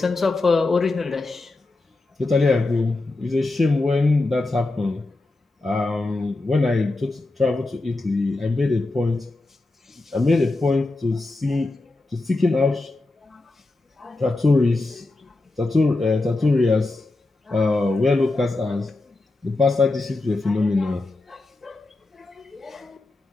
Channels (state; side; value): quieter; right; 3.1 dB